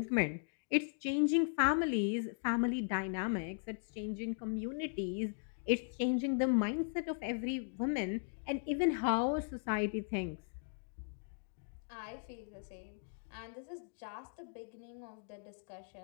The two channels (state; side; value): silent; right; digital silence